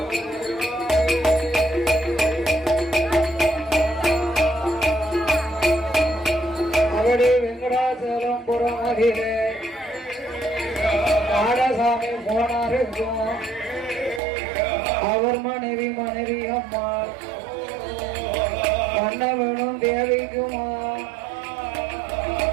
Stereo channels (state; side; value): drops out; left; at 14.2 s